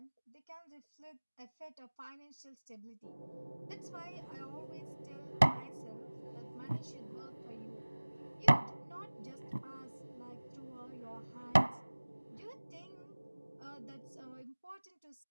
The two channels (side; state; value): both; inverted; correlation -1.00